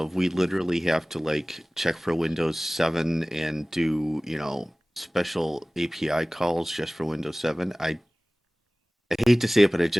we literally have to like check for Windows 7 and do, special API calls just for Windows 7, I hate to say it, but I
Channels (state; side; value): normal; both; correlation 0.98